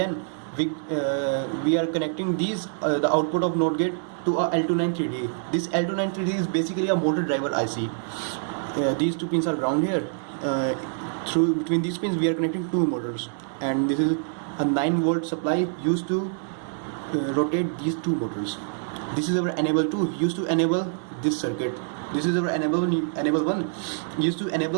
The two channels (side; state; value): left; silent; digital silence